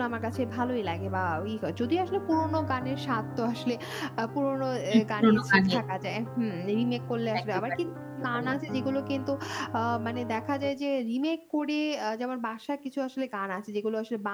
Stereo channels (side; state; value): both; identical; correlation 1.00